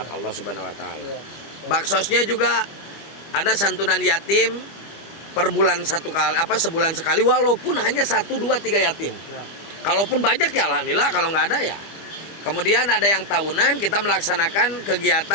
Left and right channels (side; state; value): right; late; 25 ms